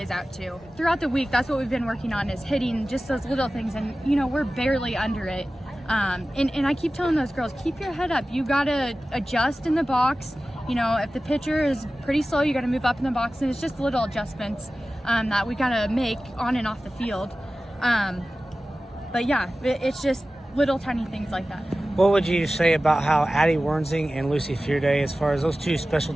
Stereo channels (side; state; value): both; normal; correlation 0.96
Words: out too. Throughout the week, that's what we've been working on, is hitting just those little things, and you know, we're barely under it. And I keep telling those girls, keep your head up. You got to adjust in the box. You know, if the pitcher is pretty slow, you got to move up in the box, and it's just little adjustments that we got to make on and off the field. But yeah, it's just little tiny things like that. What would you say about how Addie Wernsing and Lucy Fearday, as far as those two